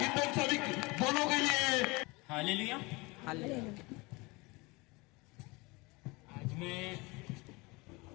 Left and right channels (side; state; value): right; quieter; 25.2 dB